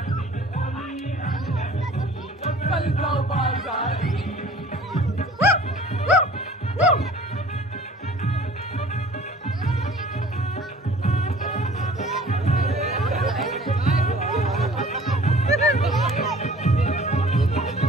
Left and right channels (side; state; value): both; normal; correlation 0.49